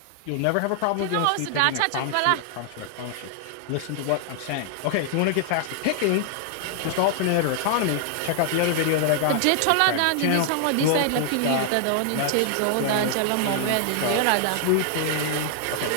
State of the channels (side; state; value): both; different; correlation 0.00